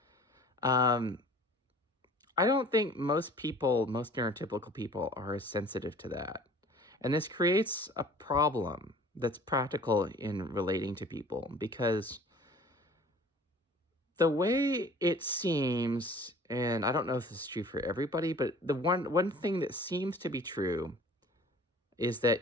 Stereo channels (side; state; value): both; normal; correlation 0.48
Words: I don't think most neurotypical people are as sensitive to that. And this creates a problem that's practical in relating to people, because the way it seems, and I don't know if this is true for everybody, but the one thing that seems to be true is that